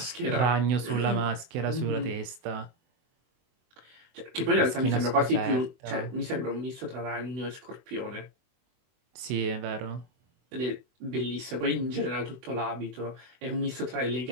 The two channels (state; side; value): late; left; 24 ms